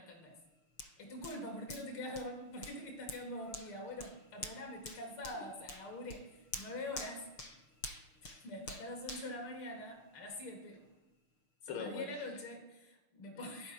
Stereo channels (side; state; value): right; late; 6.6 ms